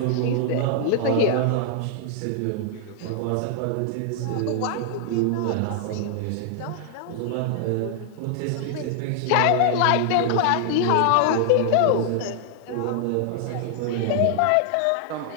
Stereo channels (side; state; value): both; different; correlation 0.00